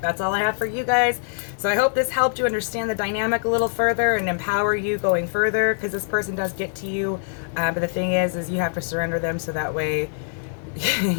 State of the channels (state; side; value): silent; right; digital silence